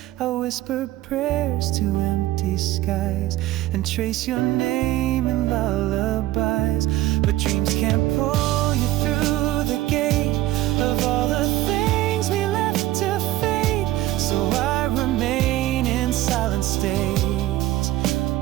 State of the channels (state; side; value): quieter; left; 15.5 dB